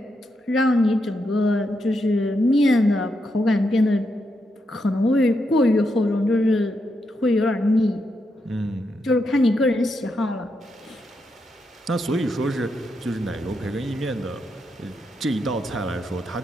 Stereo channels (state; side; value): normal; both; correlation 0.82